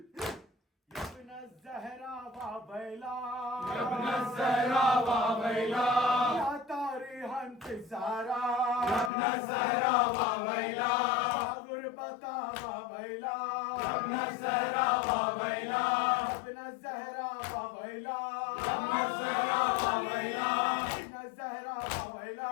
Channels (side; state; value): right; drops out; at 9.1 s